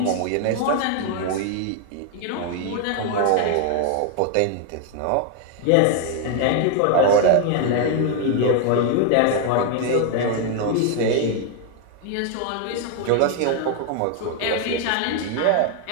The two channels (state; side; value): different; both; correlation 0.01